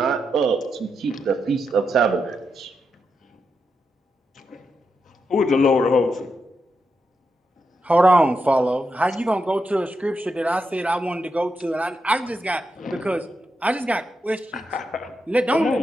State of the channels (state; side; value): normal; both; correlation 0.85